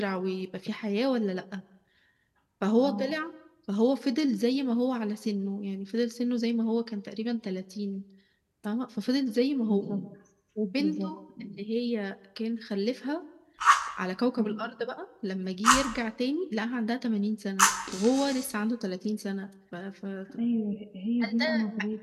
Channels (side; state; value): both; identical; correlation 1.00